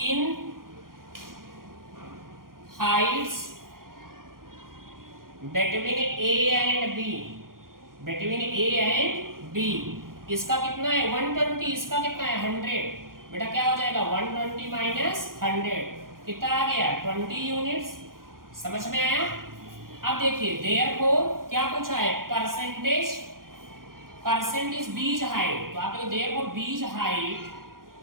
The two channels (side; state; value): left; late; 0.91 ms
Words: Heights between A and B, इसका कितना है 120, इसका कितना है 100। बेटा क्या हो जाएगा, 120 माइनस 100 कितना आ गया, 20 यूनिट्स। समझ में आया? अब देखिए, देयरफॉर क्या पूछा है, परसेंटेज बीज हाइट, तो आप लोग therefore B's height